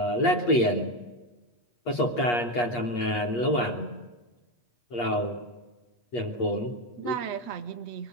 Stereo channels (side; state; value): right; late; 8.4 ms